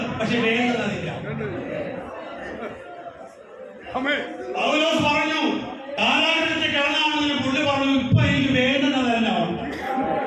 പക്ഷെ വേണ്ടതില്ല. പൗലോസ് പറഞ്ഞു, കാലാഗ്രഹത്തിൽ കിടന്നാണെന്ന് പുള്ളി പറഞ്ഞു, ഇപ്പൊ എനിക്ക് വേണ്ടുന്നതെല്ലാം ഉണ്ട്.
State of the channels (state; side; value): identical; both; correlation 1.00